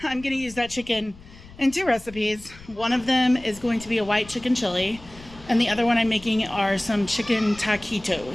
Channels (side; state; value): left; noise; rumble, 20 dB below the sound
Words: I'm gonna use that chicken in 2 recipes. One of them is going to be a white chicken chili, and the other one I'm making are some chicken